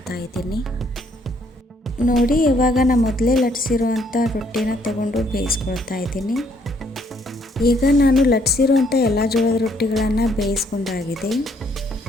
ಇದ್ದೀನಿ. ನೋಡಿ ಇವಾಗ ನಾನು ಮೊದಲೇ ಲಟ್ಟಿಸಿರುವಂಥ ರೊಟ್ಟಿನ ತಗೊಂಡು ಬೇಯಿಸ್ಕೊಳ್ತಾ ಇದ್ದೀನಿ. ಈಗ ನಾನು ಲಟ್ಟಿಸಿರುವಂಥ ಎಲ್ಲ ಜೋಳದ ರೊಟ್ಟಿಗಳನ್ನು ಬೇಯಿಸ್ಕೊಂಡಾಗಿದೆ.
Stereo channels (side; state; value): both; normal; correlation 0.68